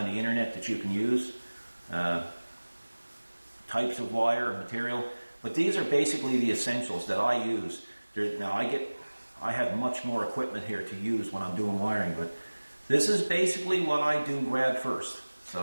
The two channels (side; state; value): both; inverted; correlation -1.00